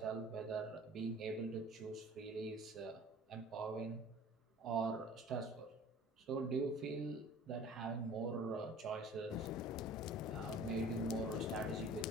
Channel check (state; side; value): normal; both; correlation 0.46